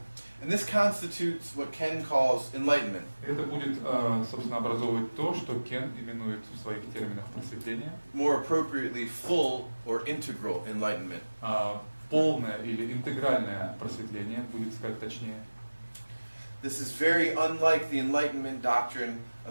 And this constitutes what Ken calls enlightenment. Это будет, собственно, образовывать то, что Кен именует в своих терминах просветление. More appropriately, full or integral enlightenment. Полное или интегральное просветление, будет сказать точнее. This is very unlike the enlightenment doctrine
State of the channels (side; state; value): both; inverted; correlation -1.00